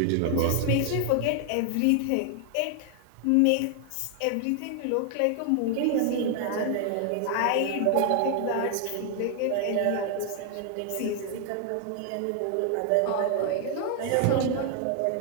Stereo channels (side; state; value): both; different; correlation 0.00